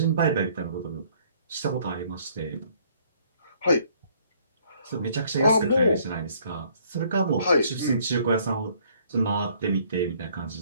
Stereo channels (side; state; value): both; inverted; correlation -0.62